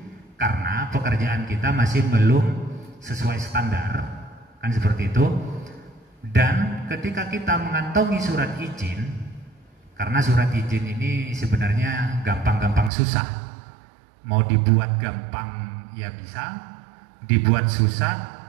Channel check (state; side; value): drops out; left; at 12.9 s